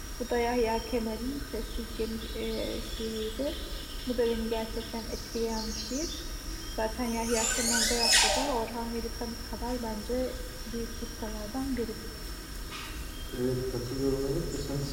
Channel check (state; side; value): identical; both; correlation 1.00